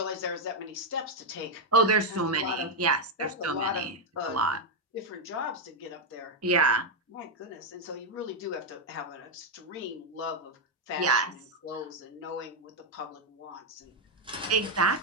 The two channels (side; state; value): both; normal; correlation 0.02